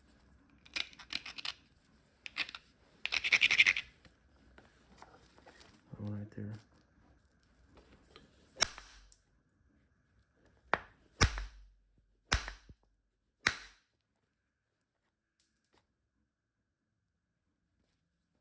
One right there.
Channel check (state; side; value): identical; both; correlation 1.00